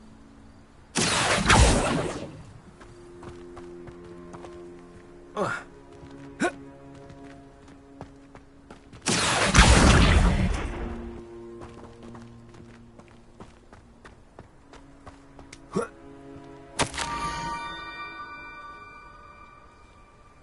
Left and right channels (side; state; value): both; identical; correlation 1.00